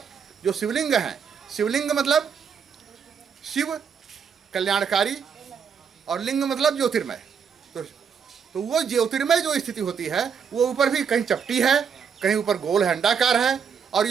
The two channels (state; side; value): quieter; left; 6.8 dB